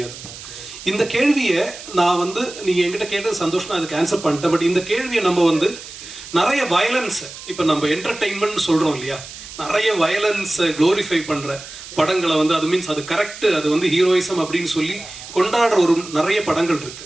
இந்த கேள்வியை நான் வந்து நீங்கள் என்கிட்ட கேட்டது சந்தோஷம், நான் அதுக்கு ஆன்சர் பண்ணிட்டேன். பட் இந்த கேள்வியை நம்ம வந்து நிறைய வயலன்ஸை, இப்போ நம்ம என்டர்டெயின்மெண்ட் சொல்கிறோம் இல்லையா, நிறைய வயலன்ஸை க்ளோரிஃபை பண்ணுற படங்களை வந்து அது மீன்ஸ் அது கரெக்டு, அது வந்து ஹீரோயிசம் அப்படின்னு சொல்லி கொண்டாடுற ஒரு நிறைய படங்கள்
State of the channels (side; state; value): right; noise; hiss, 14 dB below the sound